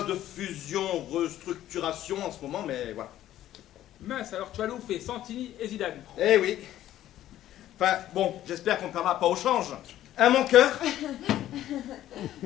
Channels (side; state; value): right; quieter; 13.0 dB